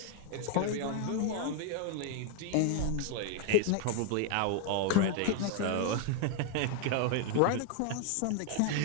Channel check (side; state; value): both; different; correlation 0.01